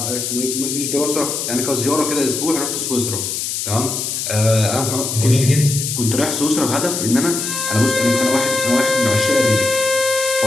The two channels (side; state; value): left; noise; hiss, 3 dB below the sound